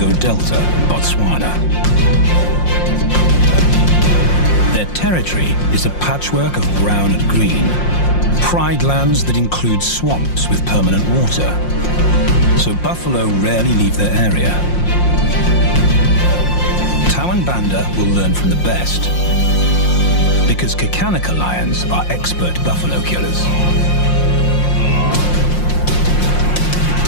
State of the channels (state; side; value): late; right; 5.6 ms